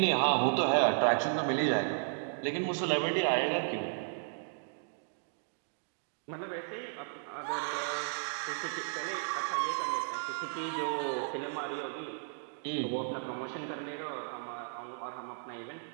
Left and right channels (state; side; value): silent; left; digital silence